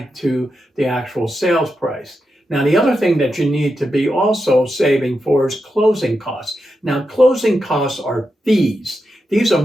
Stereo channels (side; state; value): both; normal; correlation 0.87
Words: to the actual sales price. Now, the other thing that you need to be also saving for is closing costs. Now, closing costs are fees. These are